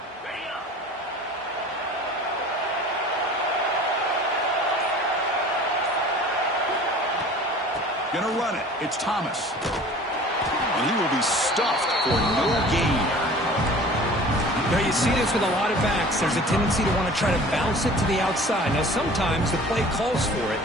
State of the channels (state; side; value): normal; both; correlation 0.44